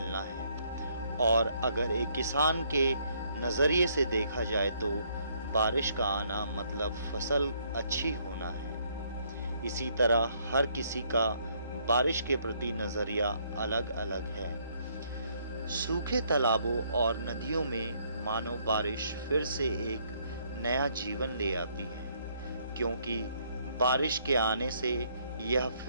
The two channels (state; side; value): inverted; both; correlation -0.69